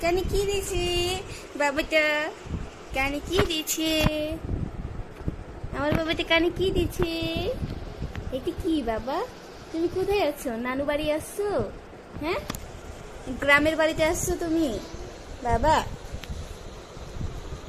কানে কি দিছি? বাবাটা কানে কি দিছে? আমার বাবাটা কানে কি দিছে? এটা কি বাবা? তুমি কোথায় আছো? নানু বাড়ি আসছো? হ্যাঁ, গ্রামের বাড়িতে আসছো তুমি? বাবা,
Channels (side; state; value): both; identical; correlation 1.00